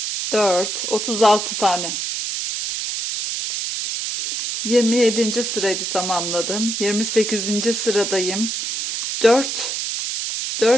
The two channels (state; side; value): noise; right; hiss, 3 dB below the sound